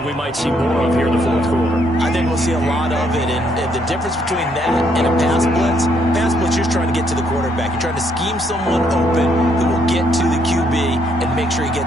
we might see more of here in the 4th quarter. I think we'll see a lot of it. And the difference between that and a pass blitz, you're trying to get to the quarterback. You're trying to scheme someone open who will get to the QB and make sure he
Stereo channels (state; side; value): normal; both; correlation 0.71